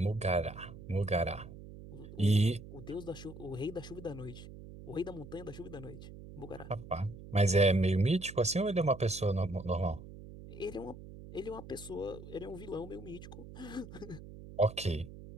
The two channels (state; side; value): noise; right; hum, 14 dB below the sound